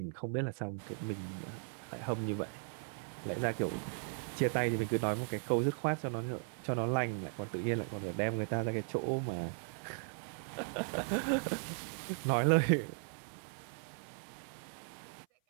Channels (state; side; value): silent; left; 53 dB below the other